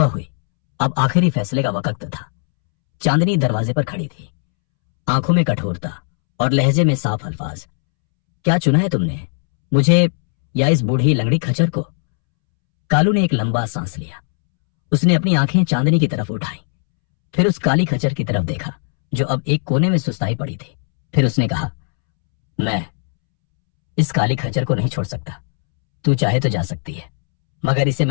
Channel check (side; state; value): right; silent; 67 dB below the other